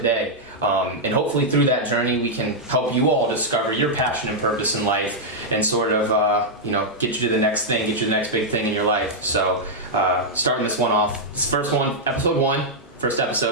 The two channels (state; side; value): normal; both; correlation -0.05